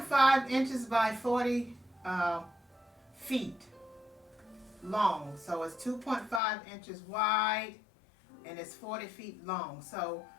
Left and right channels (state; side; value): drops out; right; at 6.4 s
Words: inches by 40 feet long. So it's 2.5 inches wide and it's 40 feet long. So